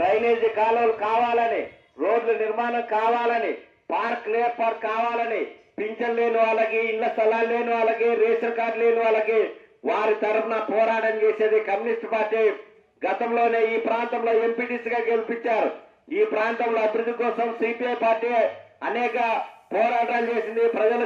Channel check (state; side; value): identical; both; correlation 1.00